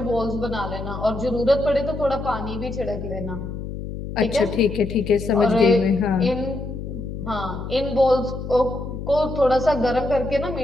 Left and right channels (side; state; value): left; noise; hum, 7 dB below the sound